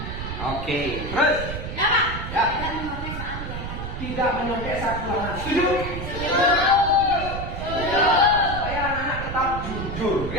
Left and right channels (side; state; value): right; noise; rumble, 7 dB below the sound